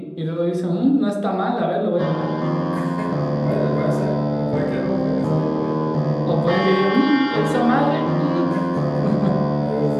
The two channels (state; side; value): identical; both; correlation 1.00